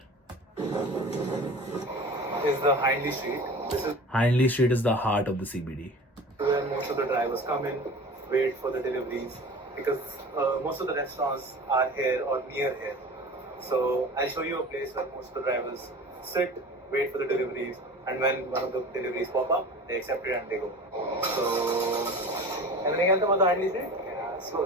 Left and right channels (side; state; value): both; normal; correlation 0.38